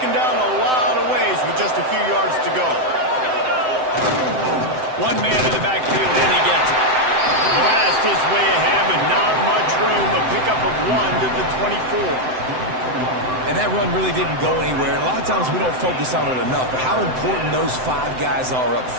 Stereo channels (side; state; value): left; late; 7.8 ms